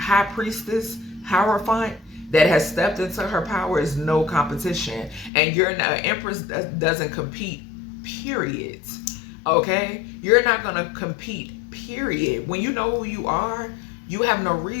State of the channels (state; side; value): drops out; right; at 5.3 s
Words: priestess, hierophant that has stepped into her power is no competition. And you're an empress that doesn't compete. Period. Okay, you're not gonna compete. Period. When you know who you are, you have no